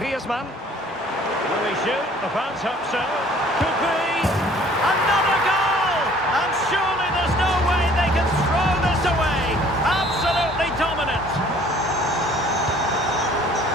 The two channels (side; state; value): both; normal; correlation 0.54